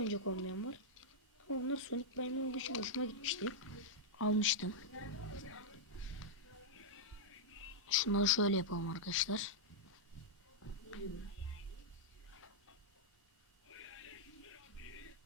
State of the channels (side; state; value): both; normal; correlation -0.06